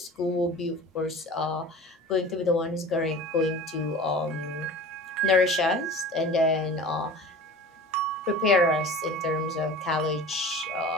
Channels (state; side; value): normal; both; correlation 0.39